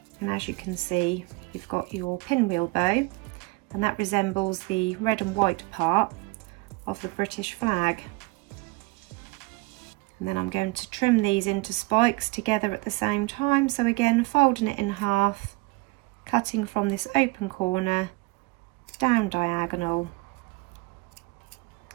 And as you can see, you've got your pinwheel bow, and that resembles the red and white part of the British flag. And then I'm going to trim these into spikes together at the same time. So again, folding it in half, cutting from this open corner down diagonal,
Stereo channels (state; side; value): quieter; left; 24.4 dB